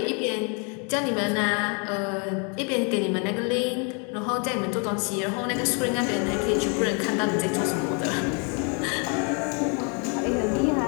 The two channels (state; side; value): quieter; right; 36.3 dB